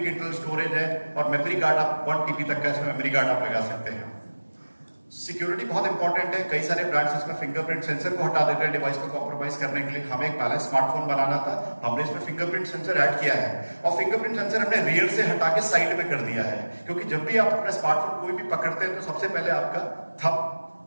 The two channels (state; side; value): inverted; both; correlation -1.00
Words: इंटरनल स्टोरेज है, और मेमोरी कार्ड आप 1 TB तक का इसमें मेमोरी कार्ड आप लगा सकते हैं। सिक्योरिटी बहुत इंपॉर्टेंट है। कई सारे ब्रांड्स इसमें फिंगरप्रिंट सेंसर को हटा देते हैं डिवाइस को कॉम्प्रोमाइज करने के लिए। हमें एक बैलेंस स्मार्टफोन बनाना था, हमने इसमें फिंगरप्रिंट सेंसर ऐड किया है, और फिंगरप्रिंट सेंसर हमने रियर से हटा के साइड में कर दिया है, क्योंकि जब भी आप अपना स्मार्टफोन कोई भी पकड़ते हैं तो सबसे पहले आपका थंब